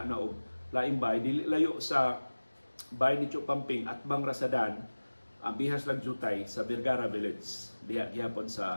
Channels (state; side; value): inverted; both; correlation -1.00